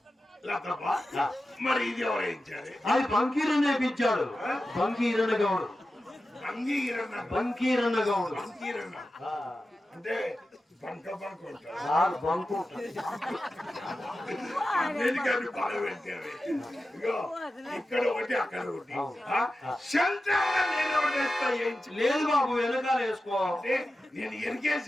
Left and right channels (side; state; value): both; normal; correlation 0.93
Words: మరి ఇది ఎవరేయించారు? అది బంకీరన్న వేయించాడు. బంకీరన్న గౌడు. బంకీరన్న గౌడు అంటే బంక బంక ఉంటారు. బంకు అన్నిటికీ బాగా పెట్టారు. ఇగో ఇక్కడ ఒకటి, అక్కడ ఒకటి. లేదు బాబు, వెనకాల వేసుకో. నేను